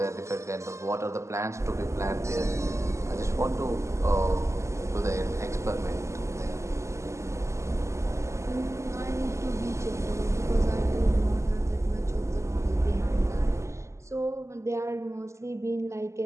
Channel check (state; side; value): late; left; 0.14 ms